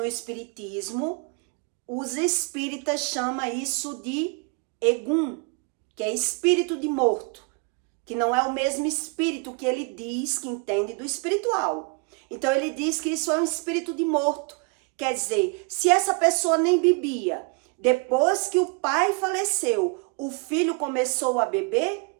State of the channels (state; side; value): quieter; left; 33.1 dB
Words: espiritismo, os espíritas chamam isso de Egum, que é espírito de morto, que não é o mesmo espírito que ele diz que entende do espiritual. Então, ele diz que isso é um espírito de morto. Quer dizer, se essa pessoa nem bebia, depois que o pai faleceu, o filho começou a